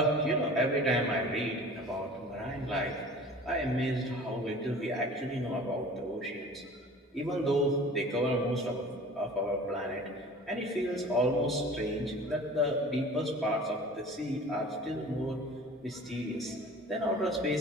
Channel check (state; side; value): normal; both; correlation 0.43